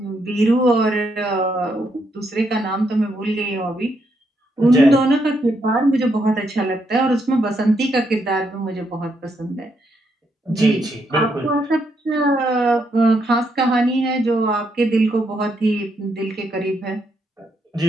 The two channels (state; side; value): normal; both; correlation 0.77